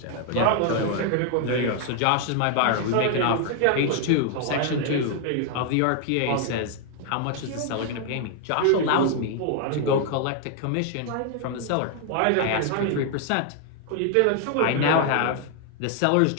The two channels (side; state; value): both; different; correlation 0.00